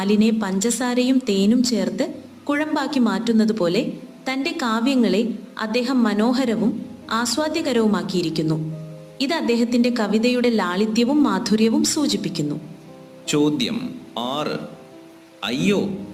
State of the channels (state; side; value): identical; both; correlation 1.00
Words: പഞ്ചസാരയും തേനും ചേർത്ത് കുഴമ്പാക്കി മാറ്റുന്നത് പോലെ തന്റെ കാവ്യങ്ങളെ അദ്ദേഹം മനോഹരവും ആസ്വാദ്യകരവുമാക്കിയിരിക്കുന്നു. ഇത് അദ്ദേഹത്തിന്റെ കവിതയുടെ ലാളിത്യവും മാധുര്യവും സൂചിപ്പിക്കുന്നു. ചോദ്യം 6. അയ്യോ,